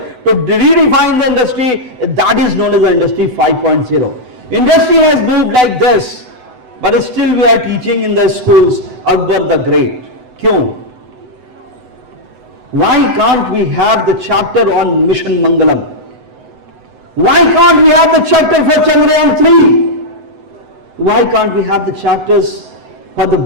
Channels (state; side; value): late; left; 7.9 ms